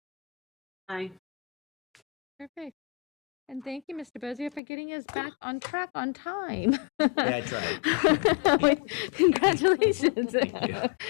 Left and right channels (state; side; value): drops out; right; at 4.6 s